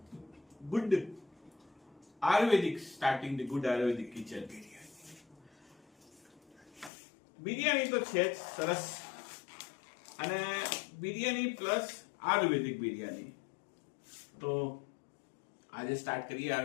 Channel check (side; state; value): right; drops out; at 6.9 s